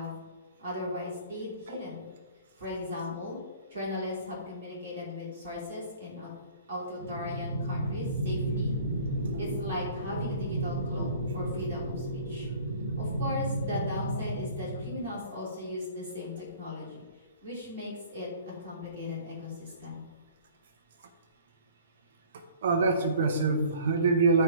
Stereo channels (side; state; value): both; inverted; correlation -0.49